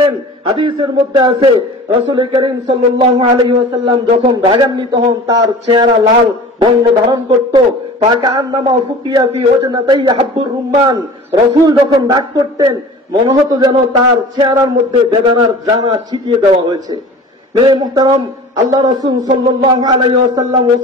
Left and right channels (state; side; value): normal; both; correlation 0.40